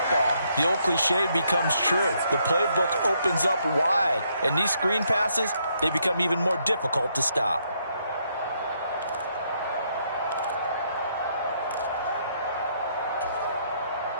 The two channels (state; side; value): inverted; both; correlation -0.74